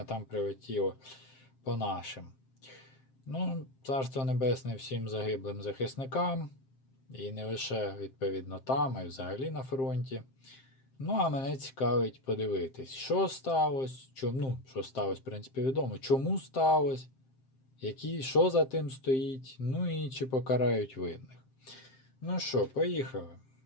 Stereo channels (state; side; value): late; right; 7.6 ms